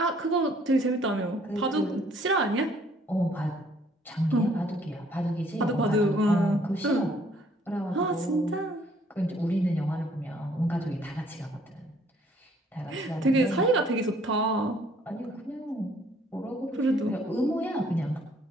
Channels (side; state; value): both; normal; correlation 0.62